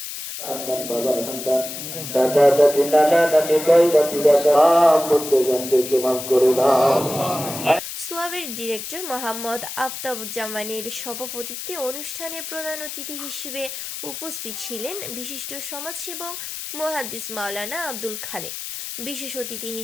সোয়াবের ডিরেক্টর মোহাম্মদ আফতাবুজ্জামানের সভাপতিত্বে অনুষ্ঠানে প্রধান অতিথি হিসেবে উপস্থিত ছিলেন বিশিষ্ট সমাজসেবক মুহাদ্দিস মাওলানা আব্দুল খালেক। বিশেষ অতিথি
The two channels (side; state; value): left; noise; hiss, 8 dB below the sound